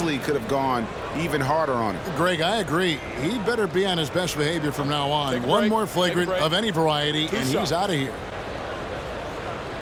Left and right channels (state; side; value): identical; both; correlation 1.00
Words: could have gone even harder on him. Greg, I agree. He better be on his best behavior from now on. One more flagrant of any variety, and he's out of here.